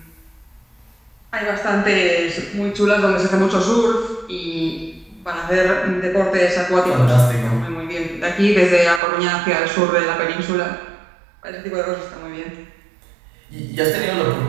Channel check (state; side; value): drops out; left; at 9.0 s